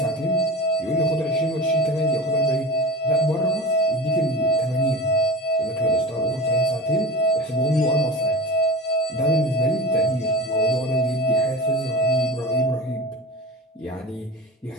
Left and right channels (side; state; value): both; normal; correlation 0.32